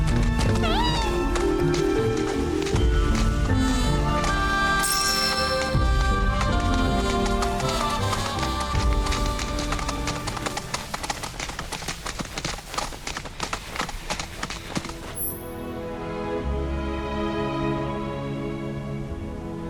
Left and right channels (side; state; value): both; identical; correlation 1.00